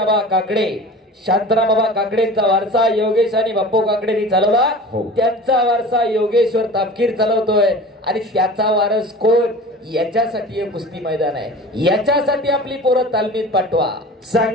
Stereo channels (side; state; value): both; normal; correlation 0.39